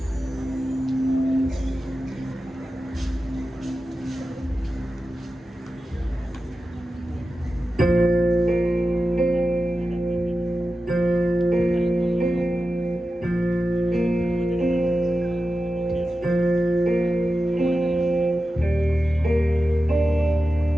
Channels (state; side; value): normal; both; correlation 0.92